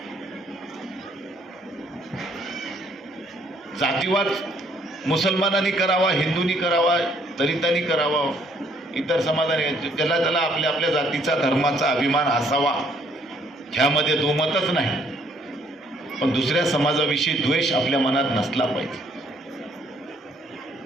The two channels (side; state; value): both; normal; correlation 0.65